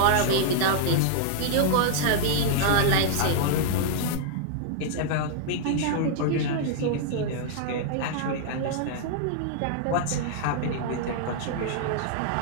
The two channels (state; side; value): different; both; correlation -0.01